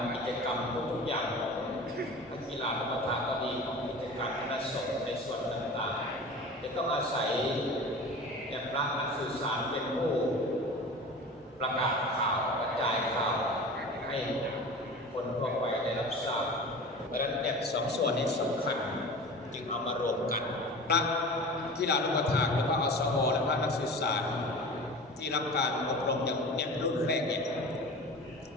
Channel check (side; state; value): both; normal; correlation 0.36